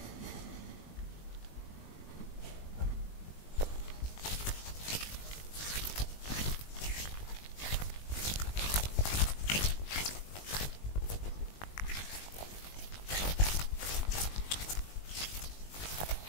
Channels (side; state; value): right; late; 20 ms